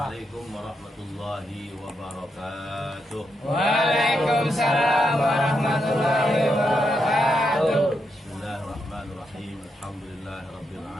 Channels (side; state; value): both; normal; correlation 0.82